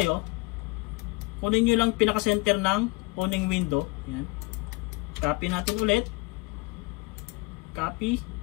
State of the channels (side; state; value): right; quieter; 25.2 dB